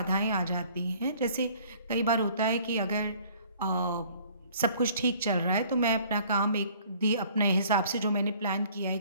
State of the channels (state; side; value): inverted; both; correlation -0.55